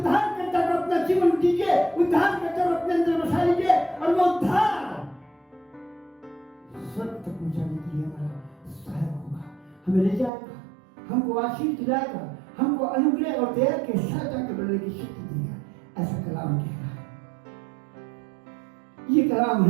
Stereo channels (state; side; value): drops out; left; at 10.3 s